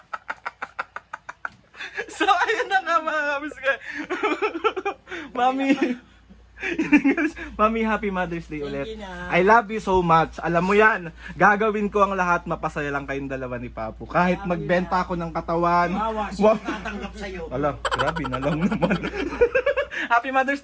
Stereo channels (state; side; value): identical; both; correlation 1.00